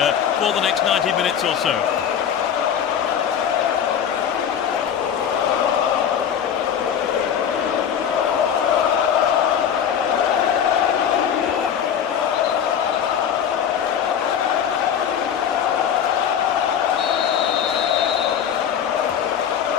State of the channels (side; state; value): right; quieter; 8.5 dB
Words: for the next 90 minutes or so.